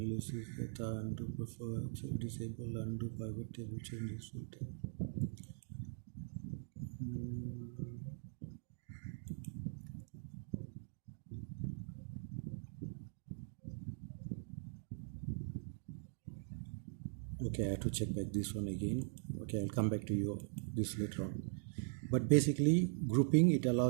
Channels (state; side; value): silent; left; digital silence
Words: data undo buffer, disable undo pivot table changes. Okay, I have to check back this one again. Okay, I'll come back to you this later on. But basically, grouping, it